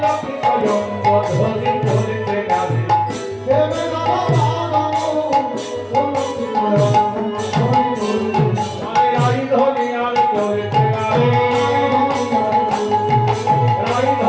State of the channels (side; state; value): both; identical; correlation 1.00